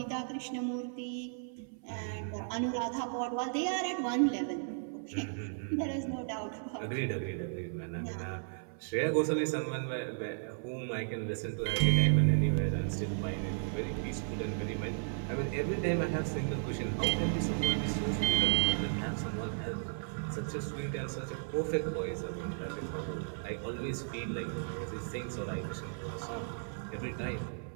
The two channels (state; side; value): silent; left; 55 dB below the other